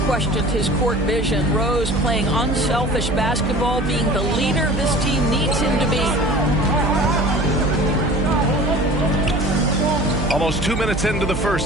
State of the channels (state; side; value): noise; right; hum, 6 dB below the sound